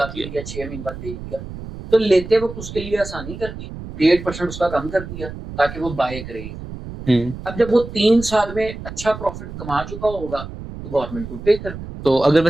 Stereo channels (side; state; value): right; noise; rumble, 11 dB below the sound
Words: अभी लिया 6 महीने बाद बेच दिया। तो लेते वक्त उसके लिए आसानी कर दी, 1.5% उसका कम कर दिया ताकि वो बाय करे। अब जब वो 3 साल में अच्छा प्रॉफिट कमा चुका होगा तो गवर्नमेंट को पे कर दे। तो अगर